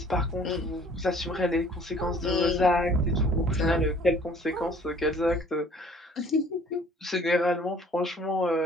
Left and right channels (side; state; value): both; normal; correlation 0.54